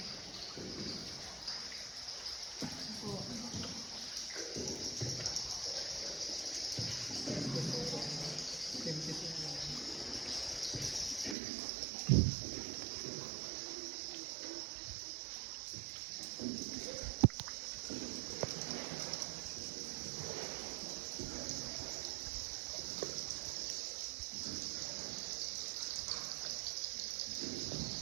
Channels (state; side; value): drops out; left; at 11.4 s